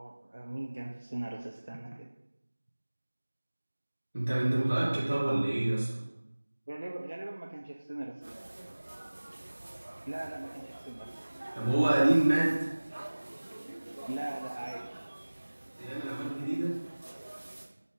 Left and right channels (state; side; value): inverted; both; correlation -1.00